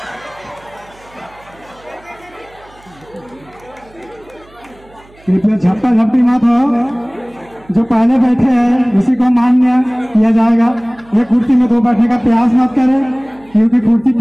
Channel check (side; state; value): right; noise; hum, 27 dB below the sound